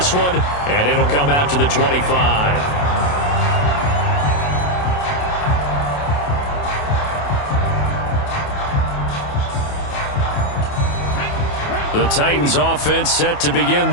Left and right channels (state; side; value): late; right; 28 ms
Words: one, and it'll come out to the 25. The Titans offense set to begin